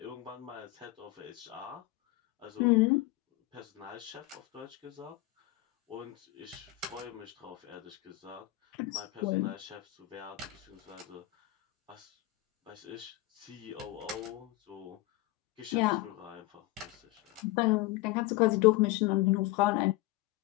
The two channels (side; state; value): right; quieter; 17.7 dB